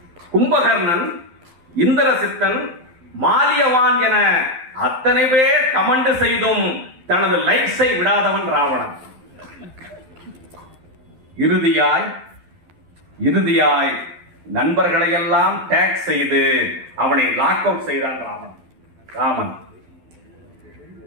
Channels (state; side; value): late; left; 12 ms